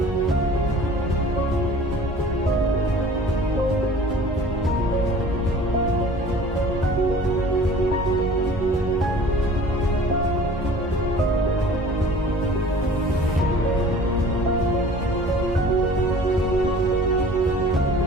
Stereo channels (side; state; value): both; normal; correlation 0.46